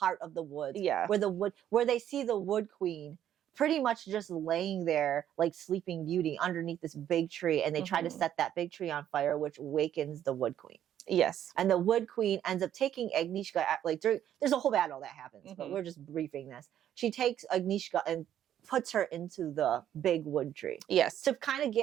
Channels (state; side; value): quieter; left; 10.7 dB